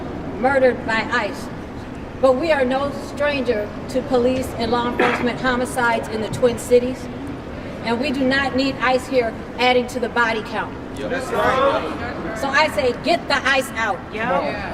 murdered by ICE. But we are no stranger to police and law enforcement homicides in the Twin Cities. And we do not need ICE here adding to the body count. That's right. So I say, get the ICE out.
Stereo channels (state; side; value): identical; both; correlation 1.00